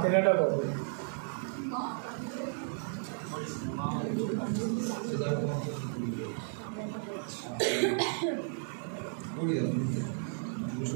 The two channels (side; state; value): left; silent; 55 dB below the other